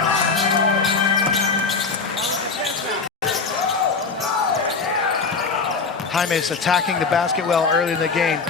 Jaime's attacking the basket well early in the game.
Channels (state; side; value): quieter; right; 4.6 dB